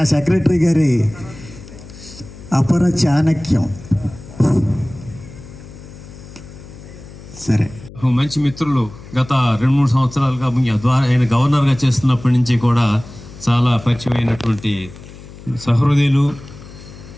సెక్రటరీ గారి అపర చాణక్యం. సరే, మంచి మిత్రులు గత 2-3 సంవత్సరాలుగా ఆయన గవర్నర్గా చేస్తున్నప్పటి నుంచి కూడా చాలా పరిచయమైనటువంటి సహృదయులు,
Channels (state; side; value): noise; left; hum, 17 dB below the sound